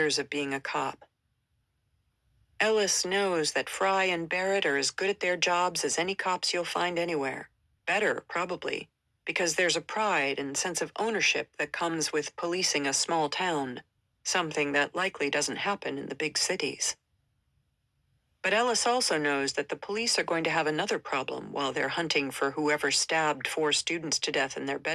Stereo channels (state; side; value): identical; both; correlation 1.00